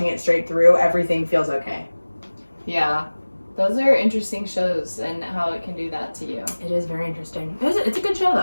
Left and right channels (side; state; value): both; inverted; correlation -1.00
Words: it straight through, everything feels okay. Yeah. Those are interesting shows and how it can do that to you. It is very interesting. It's a good show,